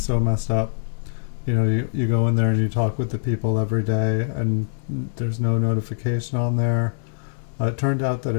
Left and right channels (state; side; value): silent; right; digital silence